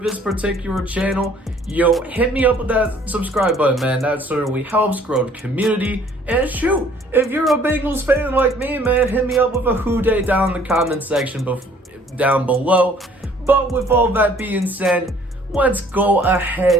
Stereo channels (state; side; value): normal; both; correlation 0.57